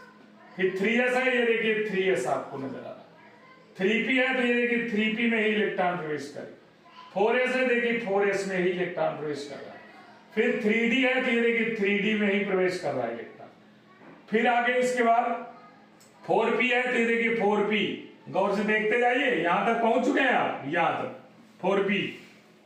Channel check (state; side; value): identical; both; correlation 1.00